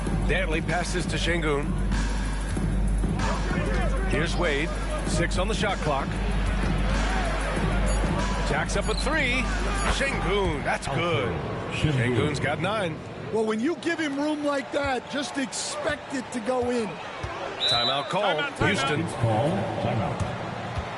Dantley passes to Şengün. Here's Wade. 6 on the shot clock. Jacks up a 3. Şengün, that's good. Şengün's got 9. Well, when you give him room like that, just expect it to go in. Timeout call. Houston. Timeout.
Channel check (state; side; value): identical; both; correlation 1.00